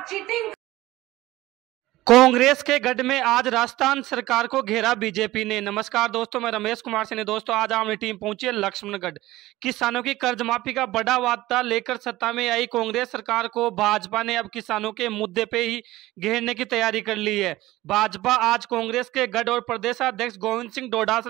चीटिंग। कांग्रेस के गढ़ में आज राजस्थान सरकार को घेरा बीजेपी ने। नमस्कार दोस्तों, मैं रमेश कुमार सिंह। दोस्तों आज हमारी टीम पहुंची है लक्ष्मणगढ़। किसानों की कर्ज माफी का बड़ा वादा लेकर सत्ता में आई कांग्रेस सरकार को भाजपा ने अब किसानों के मुद्दे पे ही घेरने की तैयारी कर ली है। भाजपा आज कांग्रेस के गढ़ और प्रदेशाध्यक्ष गोविंद सिंह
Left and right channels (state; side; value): quieter; left; 17.2 dB